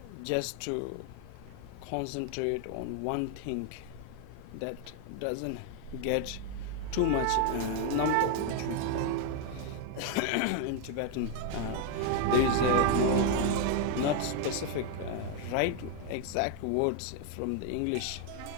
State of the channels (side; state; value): both; different; correlation 0.00